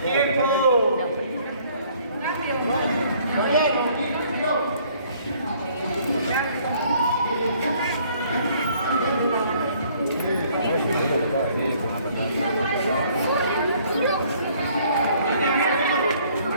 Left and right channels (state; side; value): inverted; both; correlation -0.61